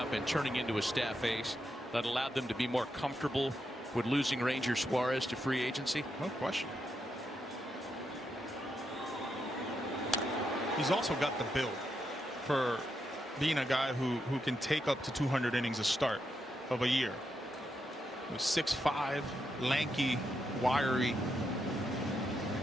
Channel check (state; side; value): normal; both; correlation 0.83